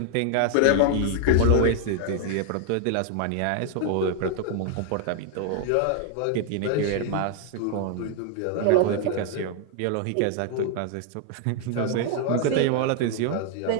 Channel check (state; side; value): different; both; correlation 0.00